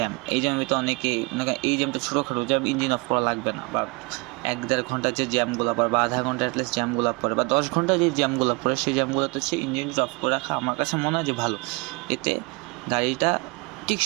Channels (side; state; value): left; quieter; 28.4 dB